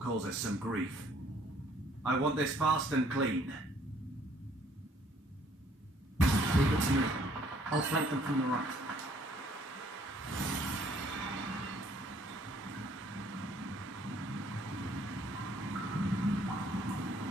us some grief. I want this fast and clean. Leave it to me. I'll flank them from the right.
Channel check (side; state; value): both; normal; correlation 0.62